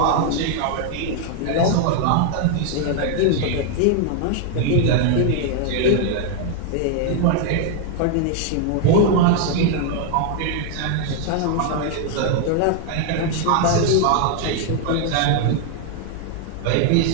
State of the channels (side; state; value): both; different; correlation 0.00